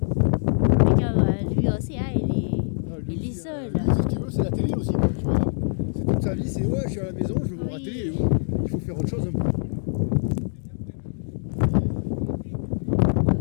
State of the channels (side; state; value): right; silent; digital silence